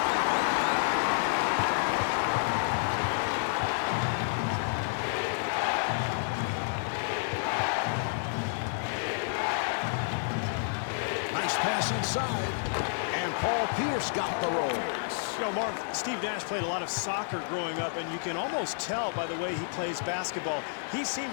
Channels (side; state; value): right; silent; digital silence